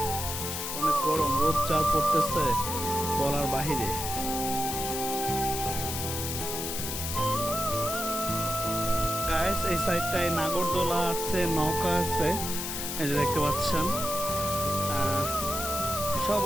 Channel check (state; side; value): noise; left; hiss, 4 dB below the sound